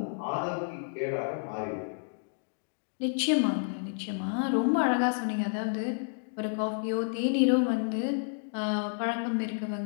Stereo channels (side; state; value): right; silent; digital silence